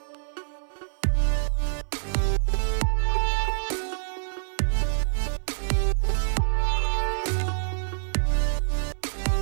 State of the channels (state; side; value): silent; left; 61 dB below the other